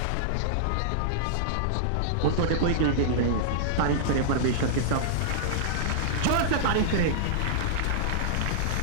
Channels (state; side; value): different; both; correlation -0.02